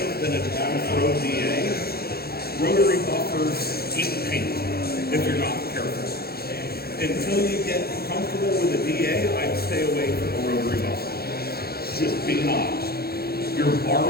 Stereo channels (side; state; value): right; late; 0.45 ms